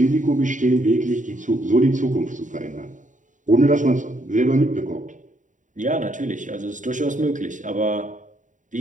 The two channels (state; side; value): late; left; 0.37 ms